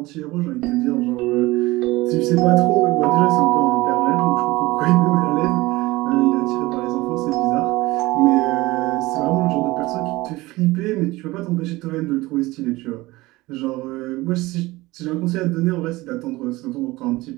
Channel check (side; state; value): left; quieter; 20.1 dB